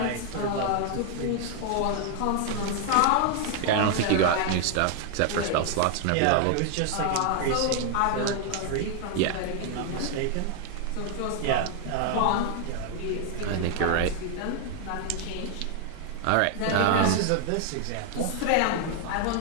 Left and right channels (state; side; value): different; both; correlation 0.00